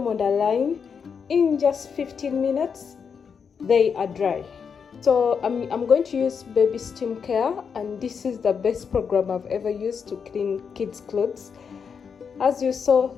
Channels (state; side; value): quieter; right; 6.4 dB